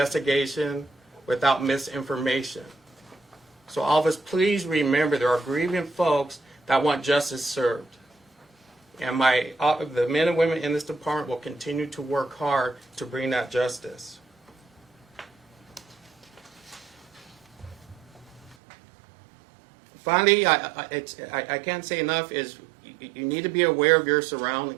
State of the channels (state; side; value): drops out; left; at 18.6 s